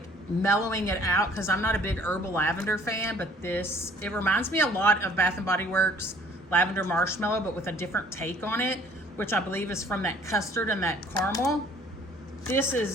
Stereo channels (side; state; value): both; normal; correlation 0.55